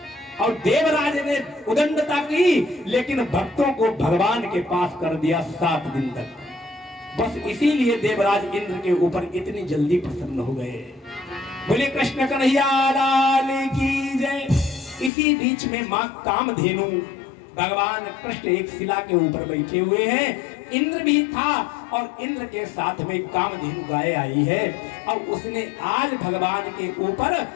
और देवराज ने उदंडता की, लेकिन भक्तों को भगवान के पास कर दिया 7 दिन तक। बस इसीलिए देवराज इंद्र के ऊपर इतनी जल्दी प्रसन्न हो गए। बोले कृष्ण कन्हैया लाल की जय। इसी बीच में मां कामधेनु, भगवान कृष्ण एक शिला के ऊपर बैठे हुए हैं, इंद्र भी था और इंद्र के साथ में कामधेनु गाय आई है और उसने आज भगवान के ऊपर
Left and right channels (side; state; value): right; drops out; at 15.1 s